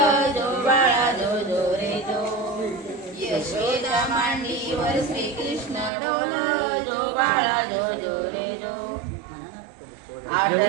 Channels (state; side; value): drops out; left; at 5.9 s